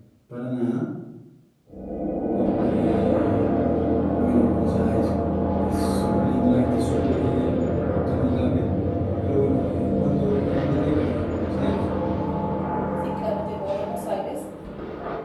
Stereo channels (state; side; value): identical; both; correlation 1.00